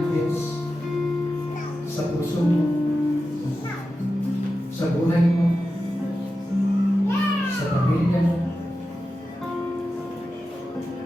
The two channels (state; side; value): normal; both; correlation 0.92